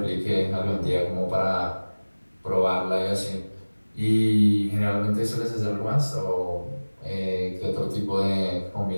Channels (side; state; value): both; inverted; correlation -1.00